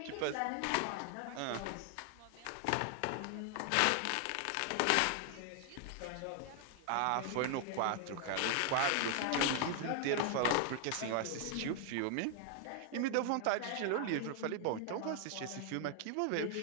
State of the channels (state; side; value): different; both; correlation 0.00